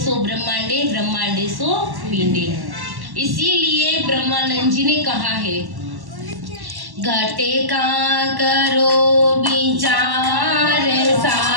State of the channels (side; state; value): left; late; 1.1 ms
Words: सो ब्रह्मांडे, ब्रह्मांडे सो पिंडे। इसीलिए ब्रह्मानंद जी ने कहा है, घटे का करो विचार